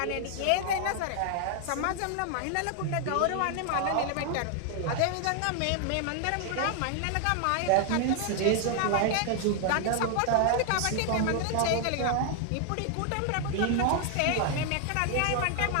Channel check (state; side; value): different; both; correlation 0.00